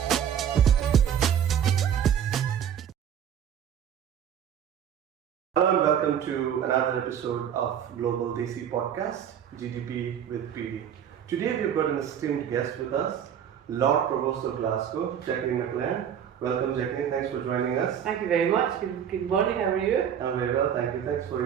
Hello and welcome to another episode of Global DC Podcast, GDP with PD. Today we've got an esteemed guest with us, Lord Provost of Glasgow, Jac Mclan. Welcome, Jacqueline. Thanks for joining us. Thank you very much. Good morning. How are you? I'm very well, thank you. Thanks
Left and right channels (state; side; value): quieter; left; 8.9 dB